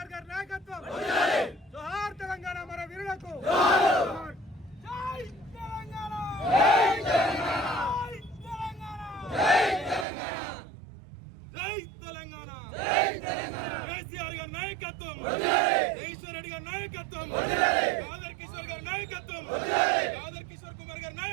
నాయకత్వం జోహార్ తెలంగాణ మన వీరులకు జై తెలంగాణ కేసీఆర్ గారి నాయకత్వం ఈశ్వర్ రెడ్డి గారి నాయకత్వం కాదర్ కిషోర్ గారి నాయకత్వం కాదర్ కిషోర్ కుమార్ గారి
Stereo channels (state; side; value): drops out; left; at 10.1 s